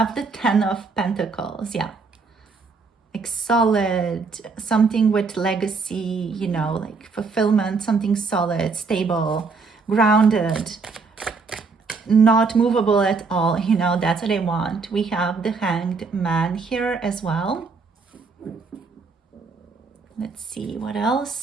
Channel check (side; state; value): left; quieter; 4.5 dB